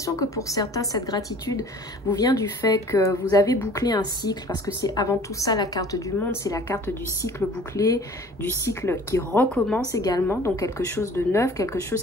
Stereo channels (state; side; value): normal; both; correlation 0.48